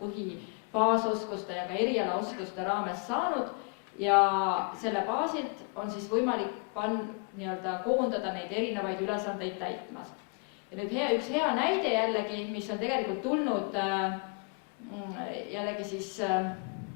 ja ka erialaoskuste raames saanud ja selle baasilt on siis võimalik koondada neid erinevaid ülesandeid täitmas. Ja nüüd üks hea näide jällegi, mis on tegelikult tulnud jällegi siis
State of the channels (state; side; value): quieter; right; 35.8 dB